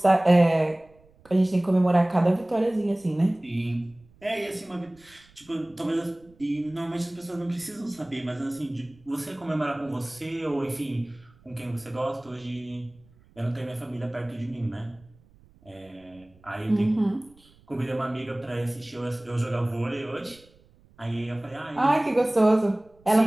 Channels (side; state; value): right; noise; rumble, 28 dB below the sound